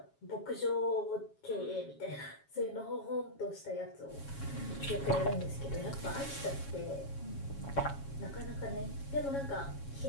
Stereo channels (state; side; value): late; right; 7.3 ms